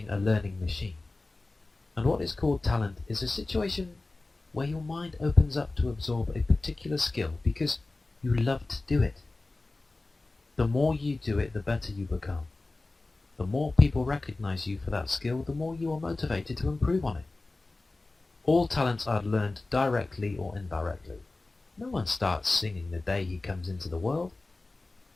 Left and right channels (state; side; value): quieter; right; 3.2 dB